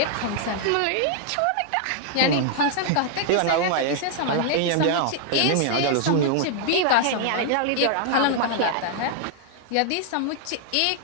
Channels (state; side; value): different; both; correlation 0.00